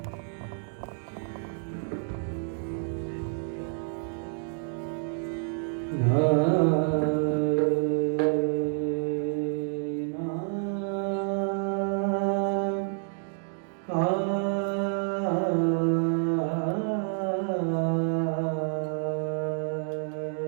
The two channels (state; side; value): silent; left; digital silence